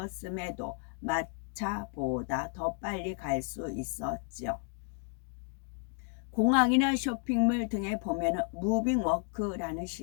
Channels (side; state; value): right; quieter; 39.5 dB